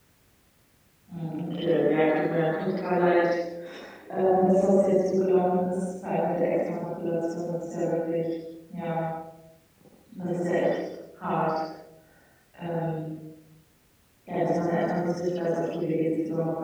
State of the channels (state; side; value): identical; both; correlation 1.00